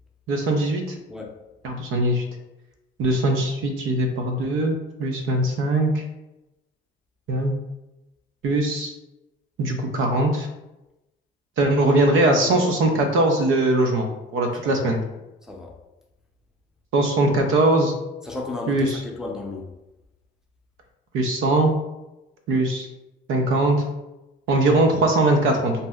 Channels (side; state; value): both; normal; correlation 0.36